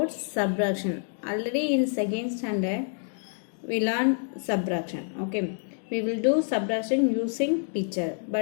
subtraction. Already in second standard, we learn subtraction. Okay, we will do subtraction using picture,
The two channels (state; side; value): silent; right; 60 dB below the other